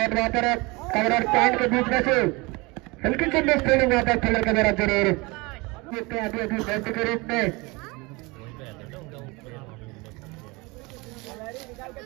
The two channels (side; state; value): left; quieter; 25.2 dB